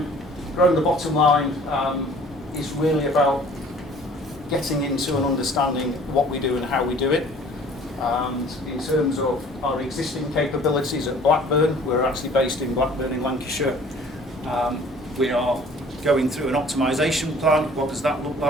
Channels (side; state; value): both; normal; correlation 0.51